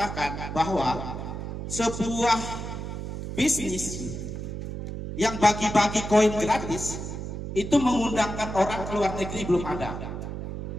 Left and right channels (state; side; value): noise; right; hum, 6 dB below the sound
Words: bahwa sebuah bisnis yang bagi-bagi koin gratis itu mengundangkan orang ke luar negeri belum ada.